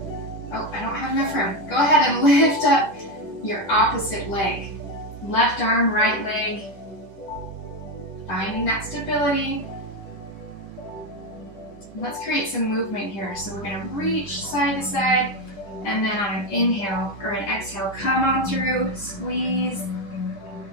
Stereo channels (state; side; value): late; right; 10 ms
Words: Oh, I don't have enough room. Go ahead and lift up your opposite leg. Left arm, right leg. Finding that stability. Let's create some movement here. So we're going to reach side to side, and then on an inhale or an exhale, come on through, squeeze,